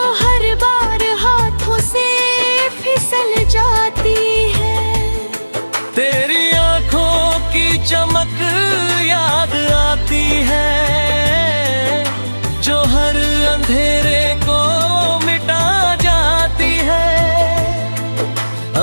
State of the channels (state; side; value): inverted; both; correlation -1.00